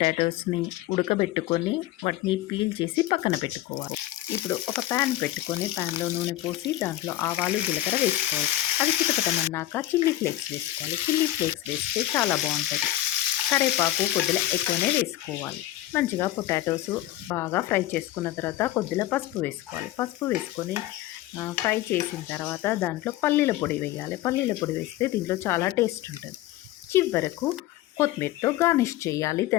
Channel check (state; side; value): quieter; right; 15.0 dB